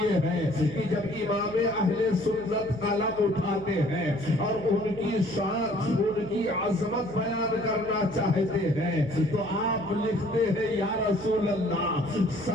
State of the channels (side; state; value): right; noise; hum, 16 dB below the sound